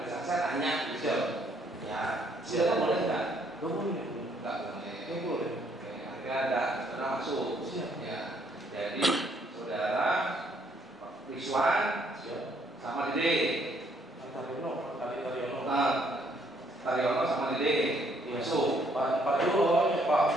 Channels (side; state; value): both; normal; correlation 0.68